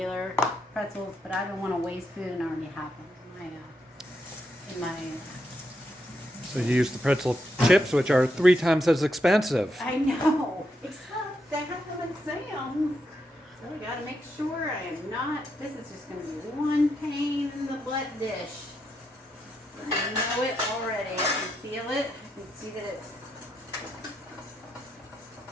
pretzels, but I don't want to waste food and I already have them in my So you use the pretzel chips, which are 3 times as expensive. I know, except they have them at Sam's. So I gotta make sure I am not, this is just gonna be one pain in the butt dish. I know it already, I can feel it, I can see that it's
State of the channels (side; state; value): both; normal; correlation 0.81